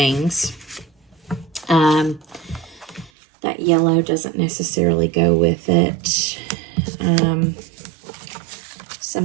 That yellow doesn't necessarily go with it.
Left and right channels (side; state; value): left; drops out; at 3.1 s